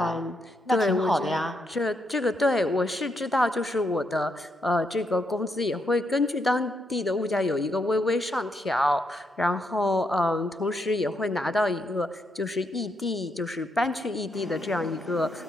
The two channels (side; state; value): both; normal; correlation 0.79